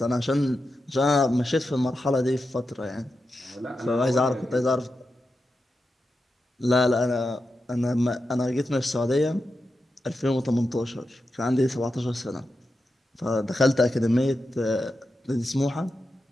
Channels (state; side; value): normal; both; correlation 0.89